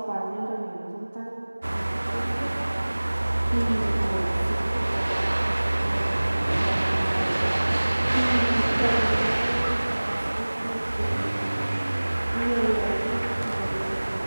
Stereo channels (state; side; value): inverted; both; correlation -1.00